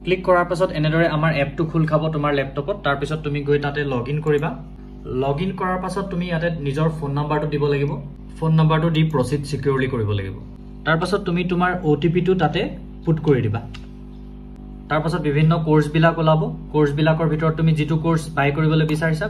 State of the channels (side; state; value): both; identical; correlation 1.00